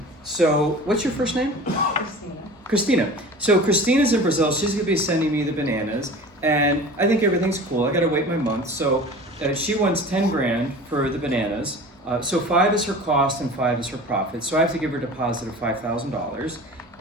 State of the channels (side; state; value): both; normal; correlation 0.38